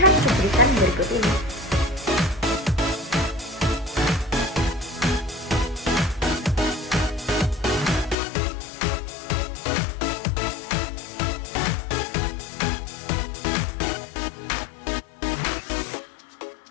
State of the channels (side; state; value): right; drops out; at 8.2 s